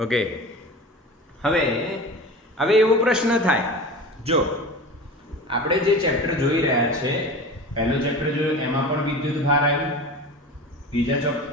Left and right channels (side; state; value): both; normal; correlation 0.33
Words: ઓકે, હવે એવો પ્રશ્ન થાય, જો આપણે જે ચેપ્ટર જોઈ રહ્યા છે, પહેલો ચેપ્ટર જોયું એમાં પણ વિદ્યુત ભાર આવ્યું, બીજા